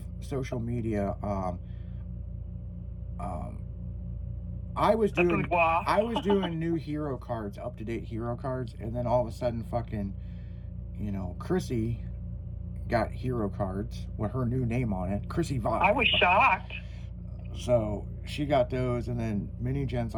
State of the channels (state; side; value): identical; both; correlation 1.00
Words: social media. I was doing new hero cards, up to date hero cards, and then all of a sudden, fucking, Chrissy got hero cards with her new name on it, Chrissy Vibe. I was shocked. So she got those, and then Mini Jen's